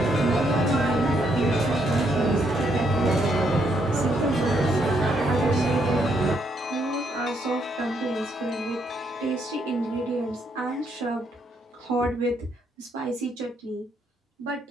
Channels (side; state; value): both; normal; correlation 0.74